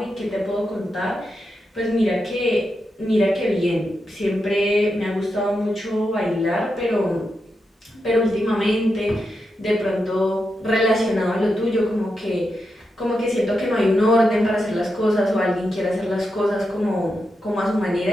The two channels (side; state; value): both; normal; correlation 0.86